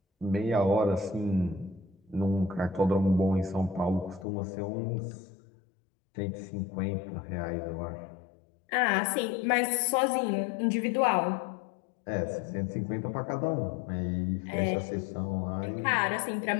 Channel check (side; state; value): right; drops out; at 4.2 s